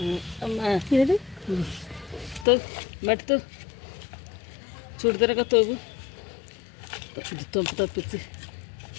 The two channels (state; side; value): drops out; right; at 2.5 s